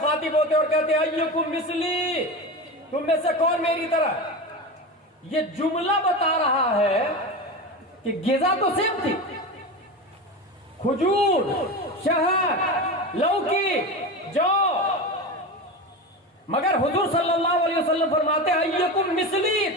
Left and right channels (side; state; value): both; normal; correlation 0.24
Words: ہوتے اور کہتے ایکم مثلی، تم میں سے کون میری طرح. یہ جملہ بتا رہا ہے کہ غذا تو سیم تھی، کھجور، شہد، لوکی، جو، مگر حضور صلی اللہ علیہ وسلم فرماتے ہیں ایکم مثلی،